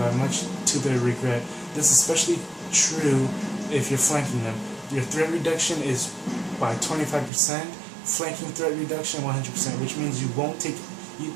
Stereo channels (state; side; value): drops out; left; at 7.3 s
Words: much to their regret. This is especially true if you're flanking them. Your threat reduction is by 25%, flanking threat reduction 100%, which means you